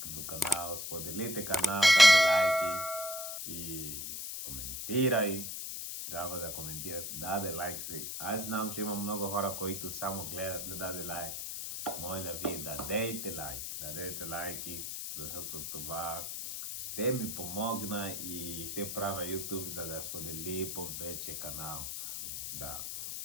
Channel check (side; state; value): left; noise; hiss, 5 dB below the sound